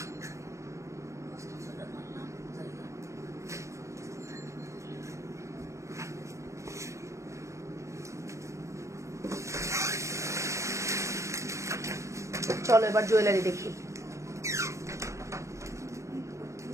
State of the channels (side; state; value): left; late; 0.15 ms